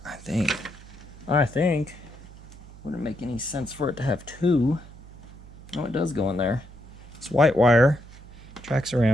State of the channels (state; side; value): noise; right; hum, 18 dB below the sound